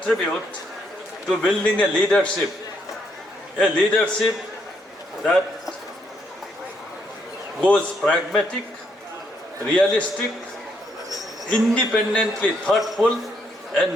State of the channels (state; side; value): normal; both; correlation 0.74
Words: to building a leadership that goes pragmatic, realistic, independently thoughtful,